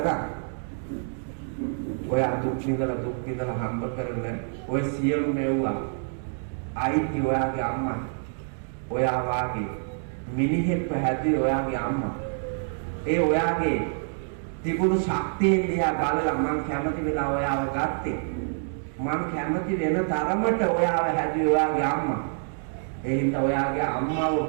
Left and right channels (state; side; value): silent; left; digital silence